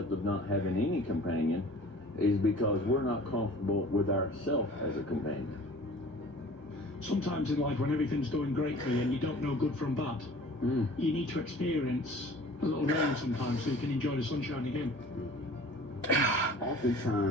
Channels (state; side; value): late; right; 1.6 ms